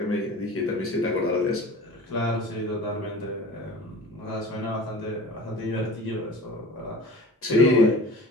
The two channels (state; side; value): normal; both; correlation 0.40